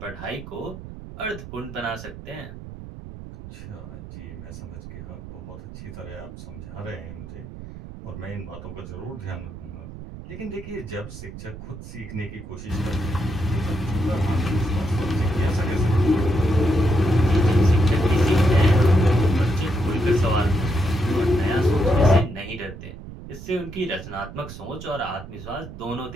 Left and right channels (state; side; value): noise; right; rumble, 13 dB below the sound